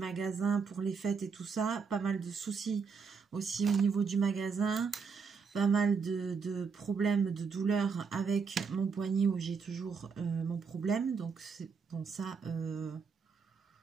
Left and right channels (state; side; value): quieter; left; 5.5 dB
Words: pour les fêtes et tout ça. Pas mal de soucis aussi au niveau du magasin. Pas mal de problèmes, de douleurs avec mon poignet où j'ai toujours mon problème. Donc, c'est bon, ça...